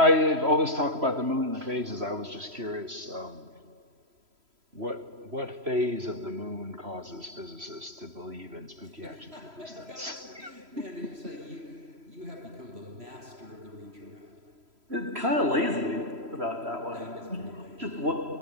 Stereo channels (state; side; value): late; left; 3.0 ms